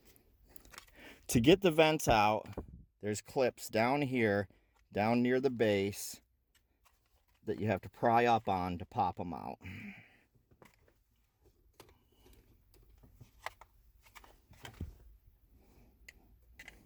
To get the vents out, there's clips down here, down near the base, that you have to pry up on to pop them out.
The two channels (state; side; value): identical; both; correlation 1.00